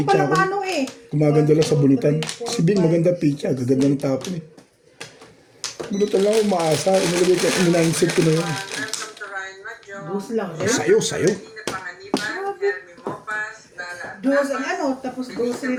pala ako. mano eh. Gumaganda lang sa bunutan. Si Bing maganda pitcha. Gaganda ng tapon eh. Bunutan lang ako umaasa. Inilagay ko. Ininainsit ko na yun. Dos lang eh. Sayo. Dos ang ano, tapos dos rin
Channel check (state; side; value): identical; both; correlation 1.00